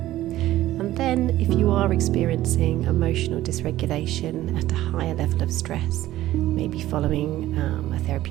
And then, if you are experiencing emotional dysregulation at a higher level of stress, maybe following a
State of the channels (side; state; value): left; quieter; 14.8 dB